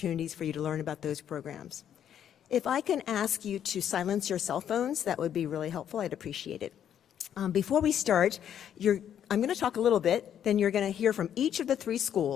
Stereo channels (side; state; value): right; quieter; 9.6 dB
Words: for you to learn about those programs. If I can ask you to silence your cell phones, that would be really helpful. I'd appreciate it. Before we start, I'm going to talk a little bit, then you're going to hear from each of the 3